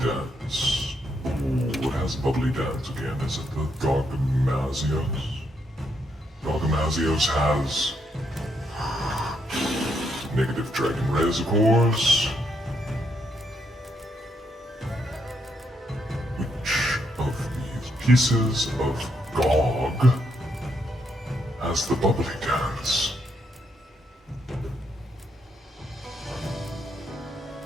Ooh, it has bubbly dance again. Is it the Gargamazios? Gargamazios has negative dragon res, of course. Which of these pieces of Gog has the bubbly dance?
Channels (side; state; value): both; normal; correlation 0.77